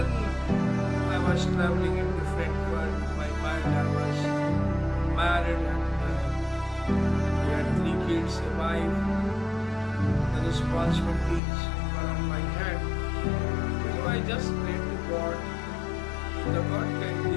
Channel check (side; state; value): right; drops out; at 11.4 s